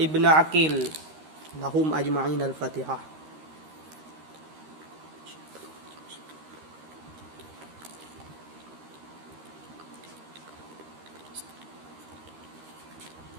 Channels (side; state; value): left; late; 13 ms